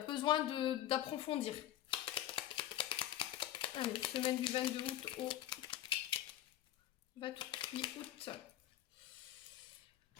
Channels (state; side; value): quieter; right; 12.7 dB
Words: besoin d'approfondir. Allez, semaine du 22 août au 28 août.